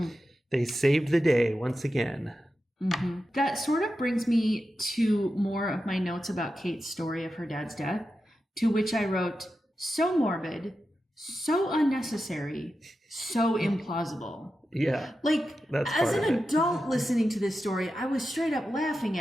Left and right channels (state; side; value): normal; both; correlation 0.90